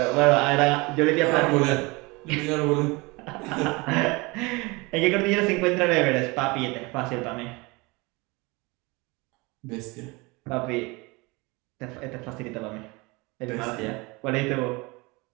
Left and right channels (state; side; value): quieter; left; 25.3 dB